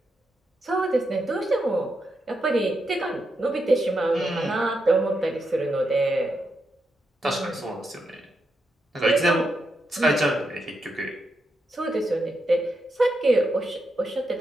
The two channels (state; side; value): normal; both; correlation 0.83